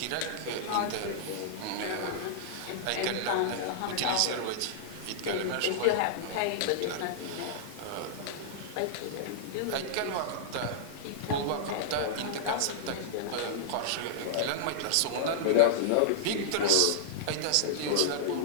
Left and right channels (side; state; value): both; different; correlation -0.02